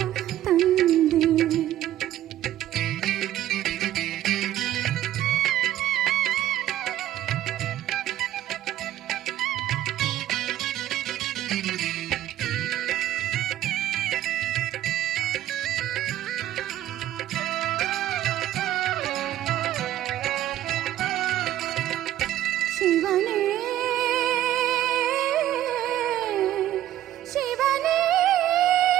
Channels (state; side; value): quieter; left; 13.0 dB